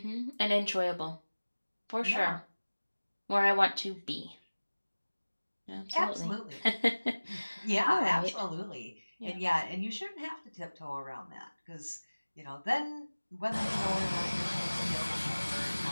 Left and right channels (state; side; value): inverted; both; correlation -1.00